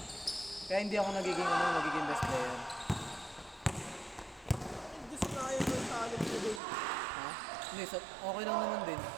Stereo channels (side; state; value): left; drops out; at 6.6 s